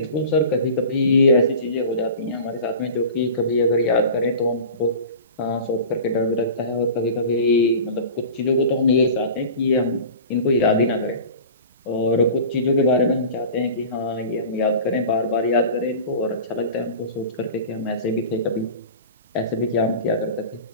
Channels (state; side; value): inverted; both; correlation -0.36